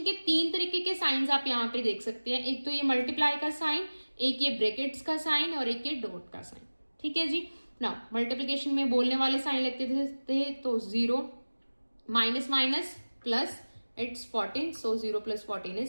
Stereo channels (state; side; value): inverted; both; correlation -1.00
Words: के 3 तरीके के साइंस आप यहाँ पे देख सकते हैं. एक तो ये मल्टीप्लाई का साइन, एक ये ब्रैकेट्स का साइन, और एक ये डॉट का साइन. ठीक है जी. ना मल्टीप्लीकेशन में बोलने वाले साइन लगते थे तो 0 minus minus plus, it's 14. So 0 + 14